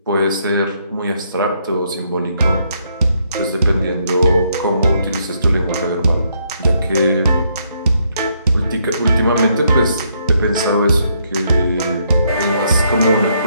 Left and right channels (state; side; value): inverted; both; correlation -0.73